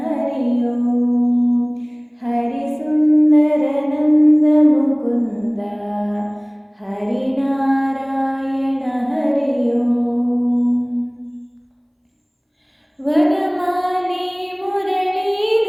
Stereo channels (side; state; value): both; identical; correlation 1.00